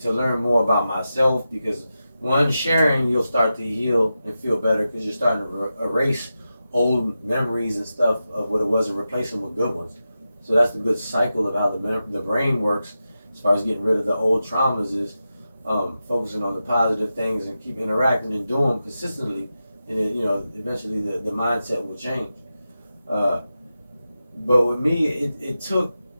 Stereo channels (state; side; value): inverted; both; correlation -0.91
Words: to learn more about myself because one, sharing, you'll start to heal and feel better because you're starting to erase old memories and stuff of what it was and replace them with good ones. So that's the good cycle of how the brain works as far as getting rid of the old traumas is focusing on the positive things and keep interacting and doing them consistently, and it, eventually the mindset will change. But with me, it took,